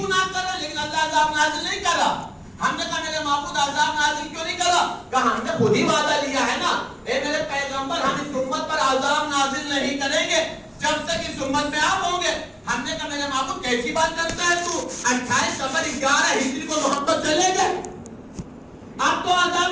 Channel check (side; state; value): both; identical; correlation 1.00